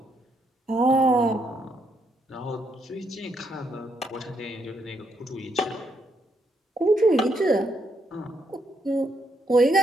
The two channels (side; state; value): both; normal; correlation 0.76